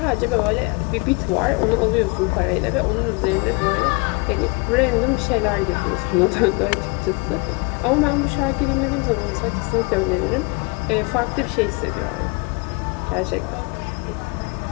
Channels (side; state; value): right; quieter; 29.1 dB